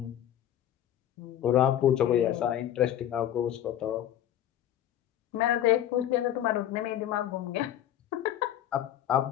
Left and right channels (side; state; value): right; quieter; 11.5 dB